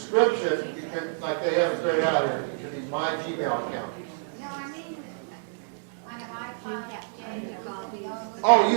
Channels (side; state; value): left; silent; digital silence